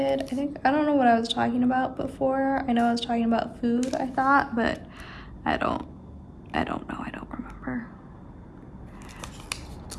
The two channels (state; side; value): identical; both; correlation 1.00